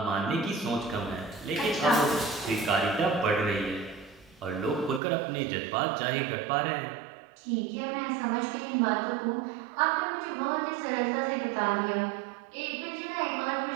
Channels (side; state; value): left; drops out; at 5.0 s